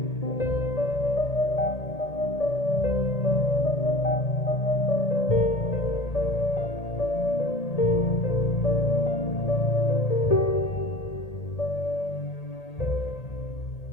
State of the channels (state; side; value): late; right; 1.8 ms